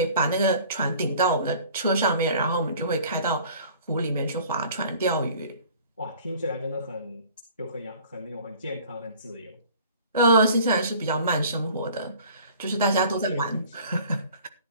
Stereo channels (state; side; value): inverted; both; correlation -0.49